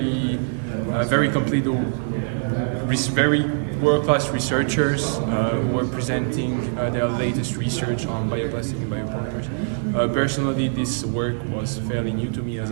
complete. Very world-class researchers who were presenting their latest research on bioplastic and biopolymers. Personally, this work was fairly new to me as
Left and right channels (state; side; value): silent; left; 63 dB below the other